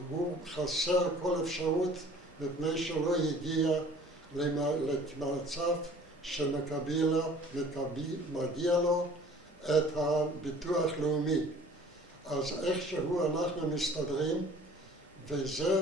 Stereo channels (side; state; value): both; normal; correlation 0.50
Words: הוא חסר כל אפשרות מפני שלא הגיע למצב שמגיע לו את הביטוח לאומי. אז איכשהו אנחנו מסתדרים,